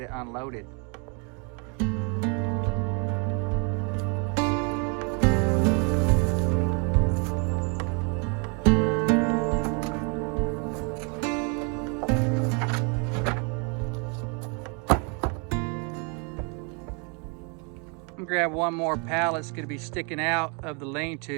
it unloaded. I'm gonna grab one more pallet. It's gonna be sticking out of the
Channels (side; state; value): left; quieter; 35.1 dB